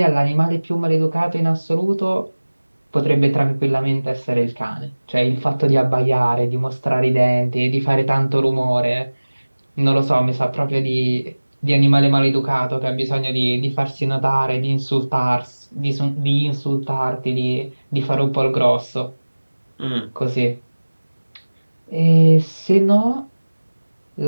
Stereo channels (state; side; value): inverted; both; correlation -1.00